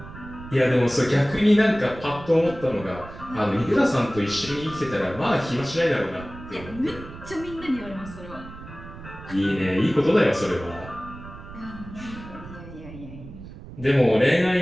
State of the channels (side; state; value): right; noise; rumble, 15 dB below the sound